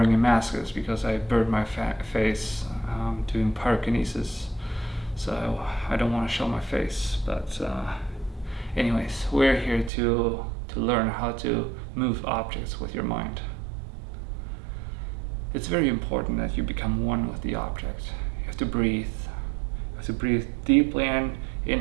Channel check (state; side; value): drops out; left; at 9.9 s